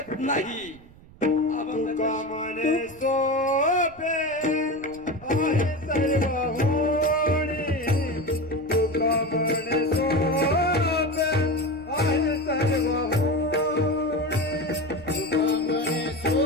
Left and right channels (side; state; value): right; noise; rumble, 23 dB below the sound